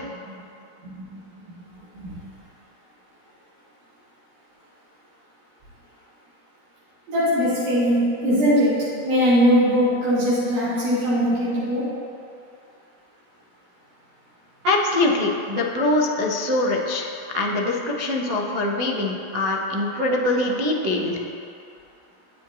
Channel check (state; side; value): late; left; 17 ms